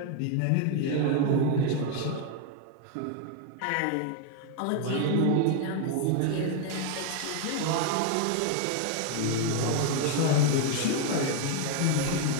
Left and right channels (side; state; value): both; different; correlation 0.01